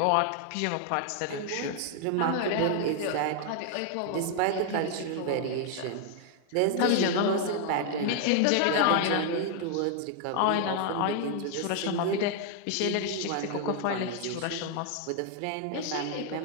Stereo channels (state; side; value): different; both; correlation 0.00